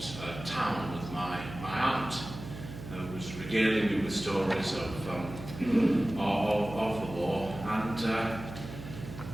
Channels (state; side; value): noise; right; hum, 11 dB below the sound